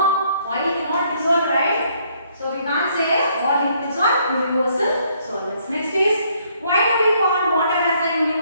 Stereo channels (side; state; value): both; inverted; correlation -0.68